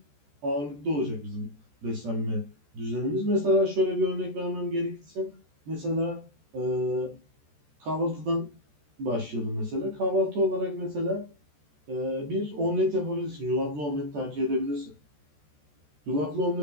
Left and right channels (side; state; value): left; late; 14 ms